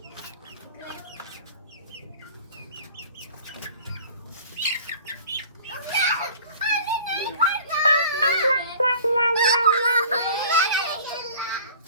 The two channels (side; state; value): both; inverted; correlation -0.46